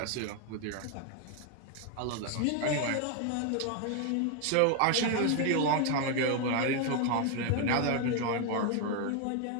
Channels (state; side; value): different; both; correlation 0.01